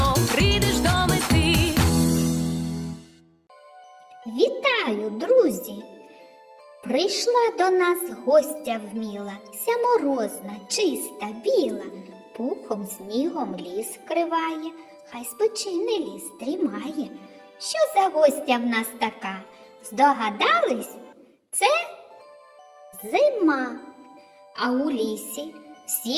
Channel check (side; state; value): both; identical; correlation 1.00